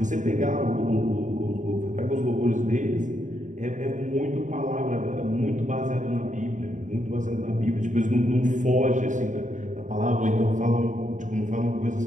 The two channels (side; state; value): left; late; 0.36 ms